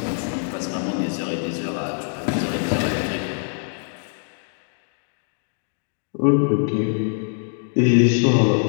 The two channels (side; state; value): right; silent; 61 dB below the other